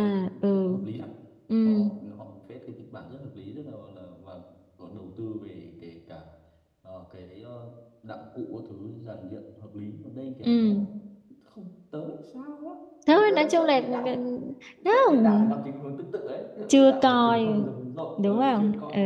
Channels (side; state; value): both; identical; correlation 1.00